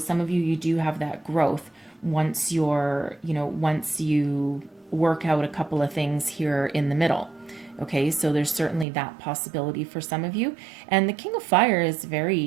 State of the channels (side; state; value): left; drops out; at 8.8 s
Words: of you do have that growth once once you work out a couple of things here in the middle. Okay, so there's certainly that possibility for some of you. And the King of Fire is